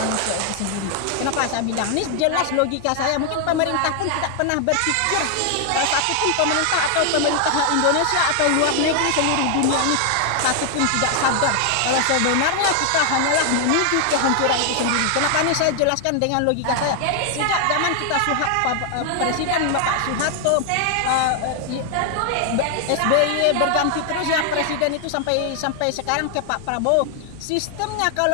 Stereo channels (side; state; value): both; different; correlation 0.00